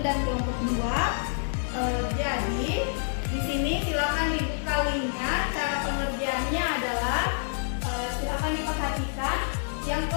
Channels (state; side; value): silent; right; digital silence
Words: dan kelompok 2. Jadi di sini silakan dibuka linknya. Cara pengerjaannya adalah silakan diperhatikan. Yang